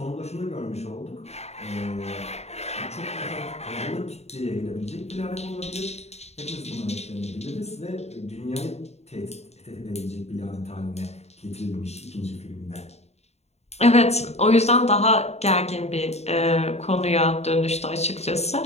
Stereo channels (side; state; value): right; late; 0.31 ms